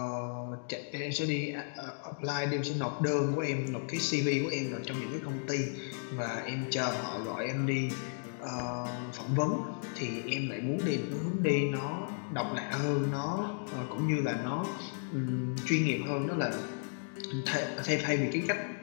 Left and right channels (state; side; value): silent; right; digital silence